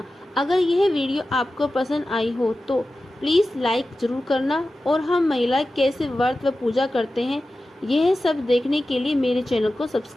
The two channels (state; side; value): normal; both; correlation 0.94